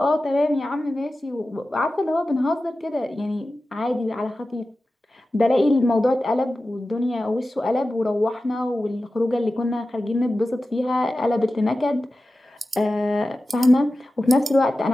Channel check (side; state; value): both; normal; correlation 0.94